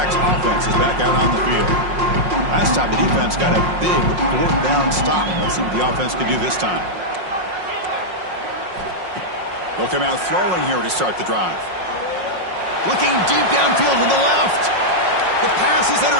offense is back out on the field. Last time the defense got a big 4th down stop. Let's see what the offense can do this time. They'll come out throwing here to start the drive. Looking deep downfield to the left. The pass is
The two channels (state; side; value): late; left; 5.5 ms